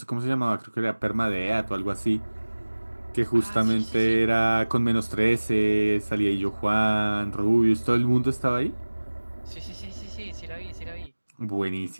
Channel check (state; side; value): inverted; both; correlation -1.00